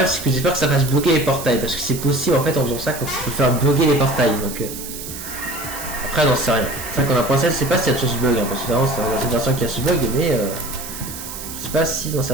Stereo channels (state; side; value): noise; right; hiss, 10 dB below the sound